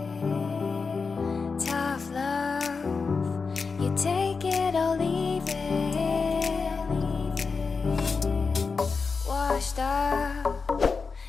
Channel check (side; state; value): right; quieter; 4.8 dB